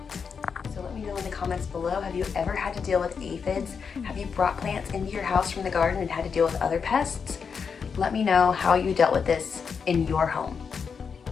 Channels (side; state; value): right; quieter; 6.1 dB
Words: So let me know in the comments below, have you ever had to deal with aphids? Have you brought plants into your house from the garden and had to deal with other pests? Let me know how you dealt with this in your home.